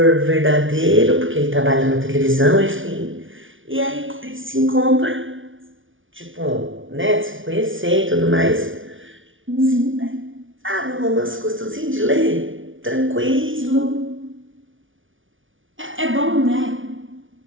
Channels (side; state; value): left; late; 0.57 ms